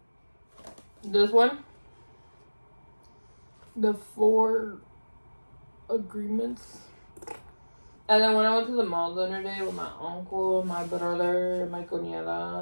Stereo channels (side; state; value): both; inverted; correlation -1.00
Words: this one, The 4 Agreements. And then when I went to the mall the other day with my uncle, my brother, my